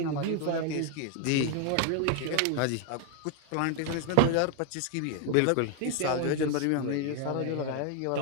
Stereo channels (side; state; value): both; different; correlation 0.01